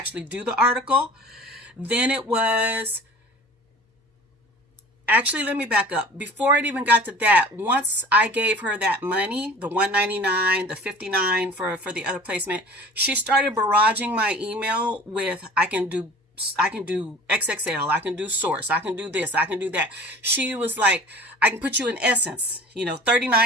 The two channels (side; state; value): both; normal; correlation 0.43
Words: do the article. Then it was, actually, let me back up. Before it even got to that, once I gave her that money, the $199, the $59 for the other placement, she started barraging my email with, I can do XXL, I can do Source, I can do this, I can do that. She was like, I can put you in Essence,